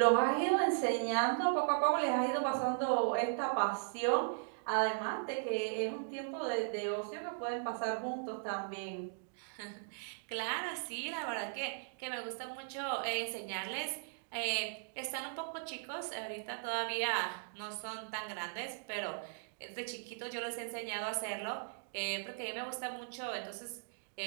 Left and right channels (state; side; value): silent; left; digital silence